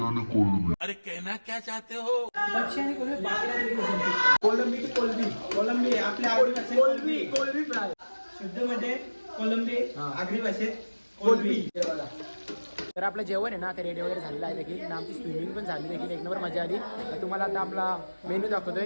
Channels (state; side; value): inverted; both; correlation -1.00